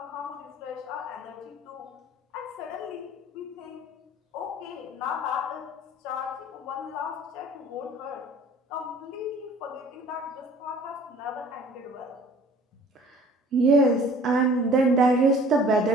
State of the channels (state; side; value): normal; both; correlation 0.50